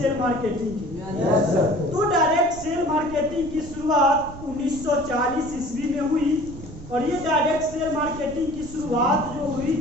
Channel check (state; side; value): noise; right; rumble, 14 dB below the sound